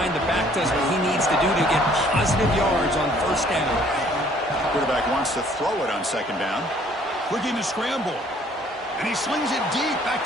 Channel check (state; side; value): normal; both; correlation 0.59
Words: The back does what he needs to do to get positive yards on first down. Quarterback wants to throw it on second down. Looking to scramble. And he slings it deep back